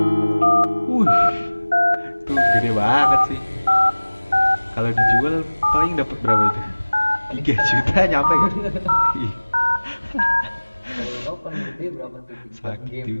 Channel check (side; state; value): both; inverted; correlation -1.00